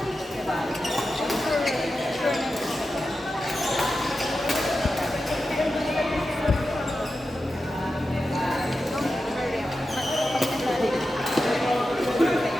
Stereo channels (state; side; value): normal; both; correlation 0.91